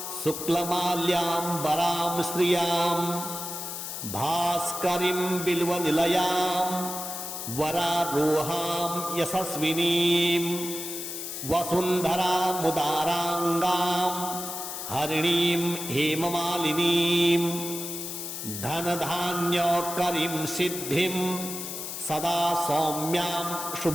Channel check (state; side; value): noise; left; hiss, 6 dB below the sound